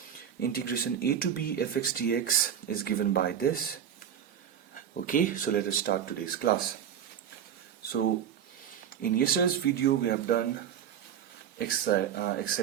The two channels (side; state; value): left; quieter; 8.9 dB